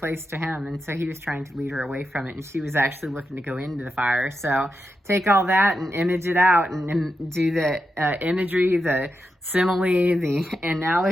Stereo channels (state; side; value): normal; both; correlation 0.87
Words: to him, and so he was trying to lead her away from it, and she was actually looking to go into the fire. So take all that and image it out and do the imagery, the simile, the